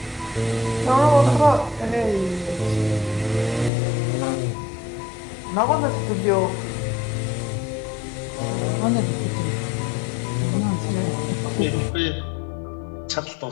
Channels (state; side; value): drops out; right; at 3.7 s